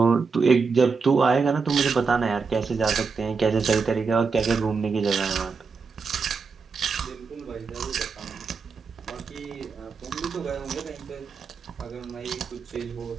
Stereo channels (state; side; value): quieter; left; 5.0 dB